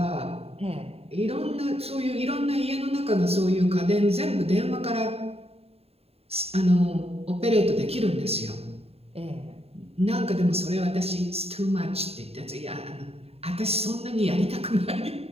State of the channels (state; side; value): late; left; 0.29 ms